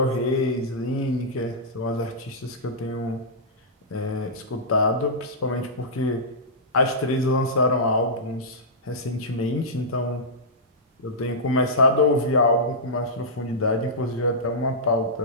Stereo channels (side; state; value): both; normal; correlation -0.14